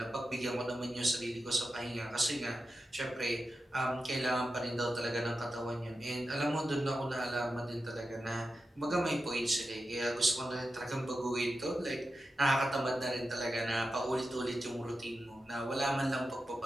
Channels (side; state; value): both; normal; correlation 0.91